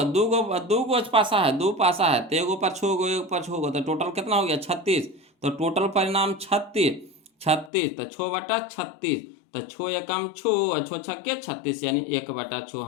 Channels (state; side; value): drops out; right; at 7.7 s